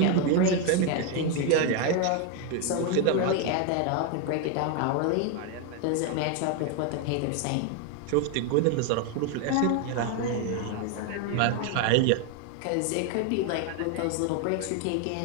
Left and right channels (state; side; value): different; both; correlation 0.01